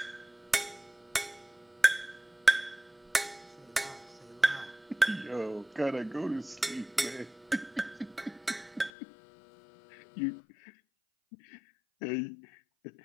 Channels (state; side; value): drops out; right; at 8.9 s